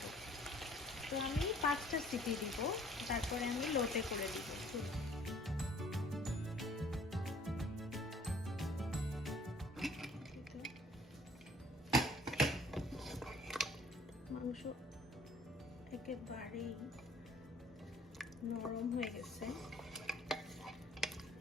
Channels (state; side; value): normal; both; correlation 0.56